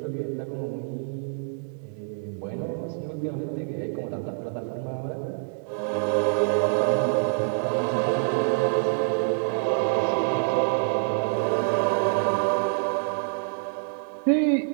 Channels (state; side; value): silent; left; digital silence